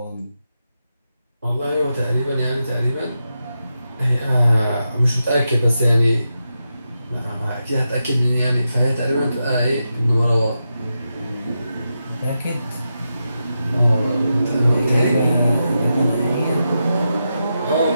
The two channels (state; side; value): inverted; both; correlation -0.88